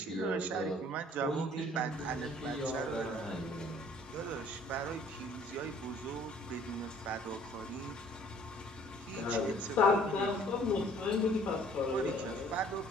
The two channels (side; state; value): both; normal; correlation 0.56